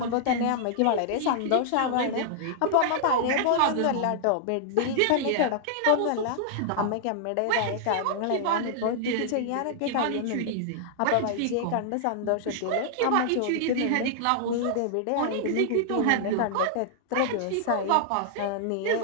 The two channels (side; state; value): both; different; correlation -0.01